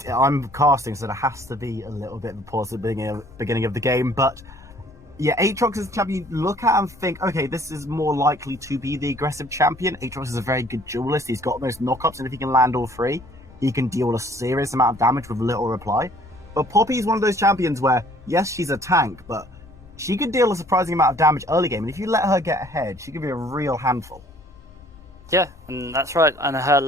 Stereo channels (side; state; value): both; normal; correlation 0.57